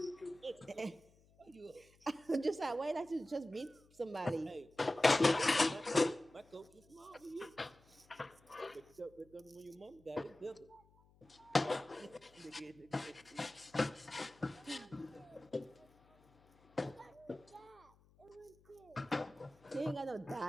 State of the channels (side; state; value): left; noise; hum, 29 dB below the sound